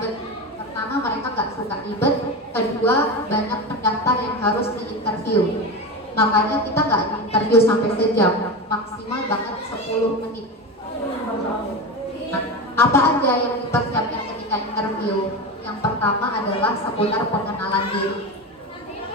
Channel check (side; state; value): both; normal; correlation 0.22